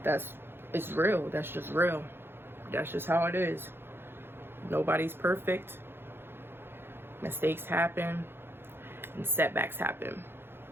It's real. That's just real. That's just how it is. Nobody's perfect. Mistakes happen and setbacks happen.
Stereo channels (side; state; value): left; late; 0.11 ms